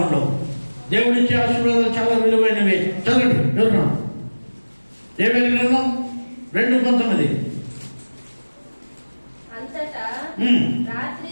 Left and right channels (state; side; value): inverted; both; correlation -1.00